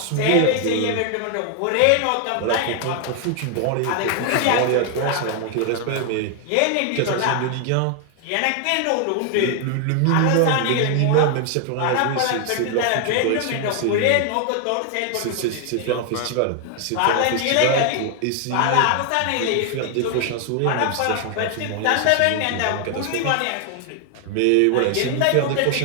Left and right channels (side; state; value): both; different; correlation 0.00